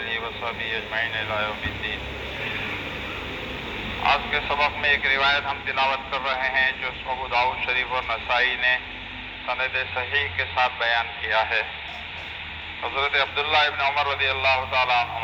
وصحبه اجمعین الی یوم الدین۔ آج کے سبق میں ایک روایت ہم تلاوت کر رہے ہیں جو ابو داؤد شریف اور نسائی نے سند صحیح کے ساتھ بیان کیا ہے۔ حضرت عبداللہ ابن عمر رضی اللہ تعالیٰ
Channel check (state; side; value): identical; both; correlation 1.00